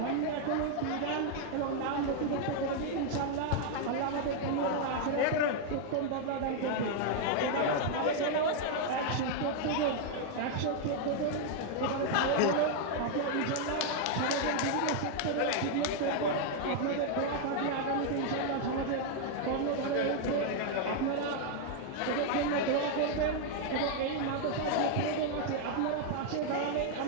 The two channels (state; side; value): different; both; correlation 0.00